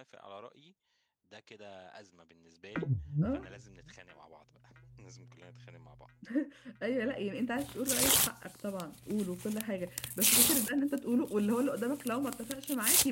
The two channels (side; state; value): both; identical; correlation 1.00